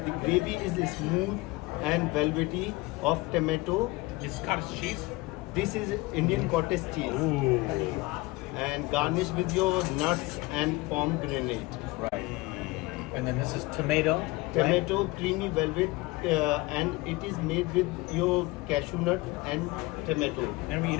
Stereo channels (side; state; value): right; quieter; 22.0 dB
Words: the gravy is smooth and velvety of tomato. this is cottage cheese. This is Indian cottage cheese Ooh. and garnished with your nuts and pomegranate. Right. And then this is tomato. Tomato, creamy velvet, and it is made with your cashew nut and tomato. And we eat